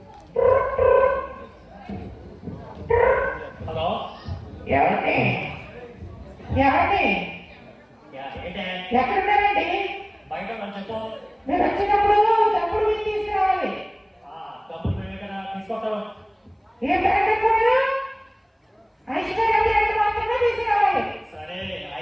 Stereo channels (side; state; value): both; identical; correlation 1.00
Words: హలో ఎవరి ఎవరి ఏంటే ఎక్కడున్నారండి? బయట మనం చెప్పు. మీరు వచ్చినప్పుడు తప్పుడు మీరు తీసుకురావాలి. డబ్బులు మేము ఇక్కడ తీసుకొస్తాం. ఏ బ్రాండ్ అనుకున్నారు? ఐశ్వర్య బ్రాండ్ మాత్రమే తీసుకురావాలి. సరే